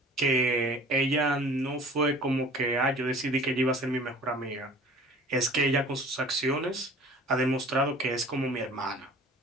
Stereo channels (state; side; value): normal; both; correlation 0.46